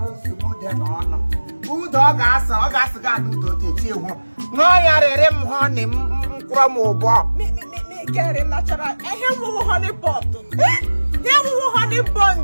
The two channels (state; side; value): inverted; both; correlation -1.00